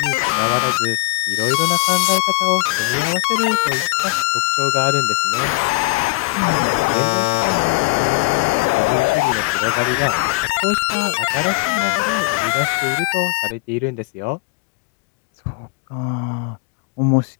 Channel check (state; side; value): quieter; right; 23.0 dB